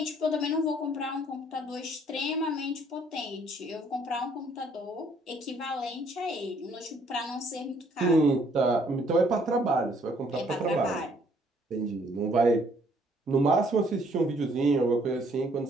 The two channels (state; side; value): normal; both; correlation 0.64